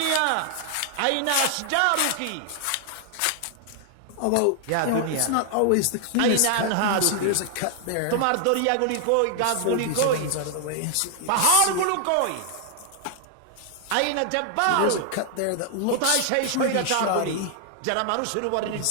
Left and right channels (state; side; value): different; both; correlation 0.00